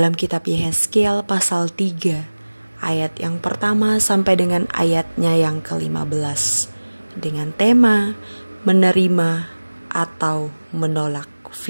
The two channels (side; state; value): both; inverted; correlation -1.00